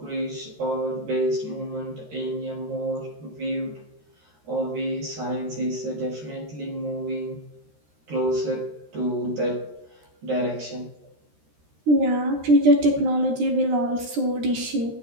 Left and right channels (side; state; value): left; late; 13 ms